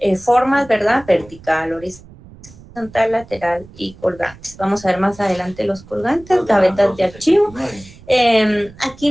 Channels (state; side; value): noise; right; rumble, 21 dB below the sound